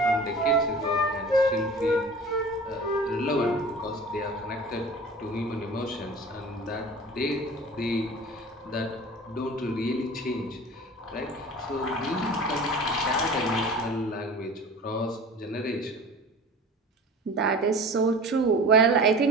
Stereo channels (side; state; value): both; normal; correlation 0.40